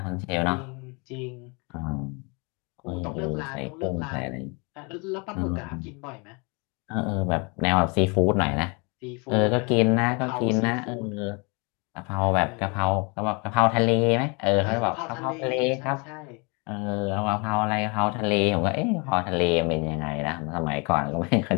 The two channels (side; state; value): right; quieter; 31.1 dB